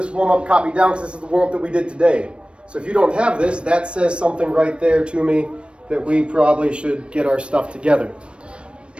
warm-up copied down because this is the warm-up that we did today. So if you don't have this, that says something right there to me that we probably should get our stuff together.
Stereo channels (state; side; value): late; left; 0.058 ms